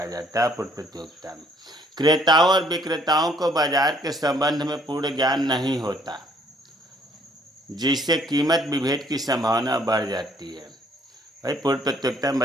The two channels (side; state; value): both; normal; correlation 0.63